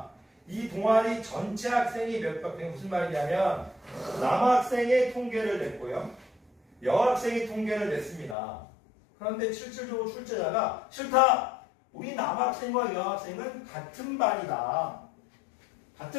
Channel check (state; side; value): drops out; right; at 8.3 s